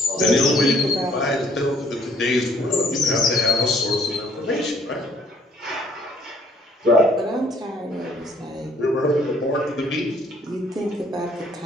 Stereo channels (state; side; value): normal; both; correlation 0.61